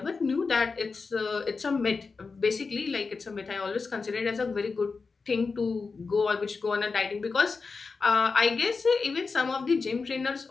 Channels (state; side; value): quieter; right; 4.5 dB